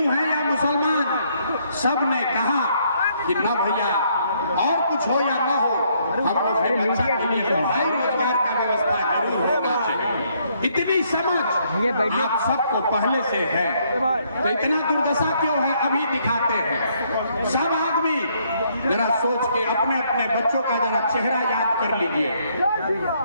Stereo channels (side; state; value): both; inverted; correlation -0.70